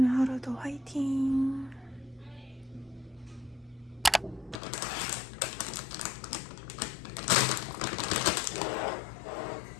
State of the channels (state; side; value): drops out; right; at 4.6 s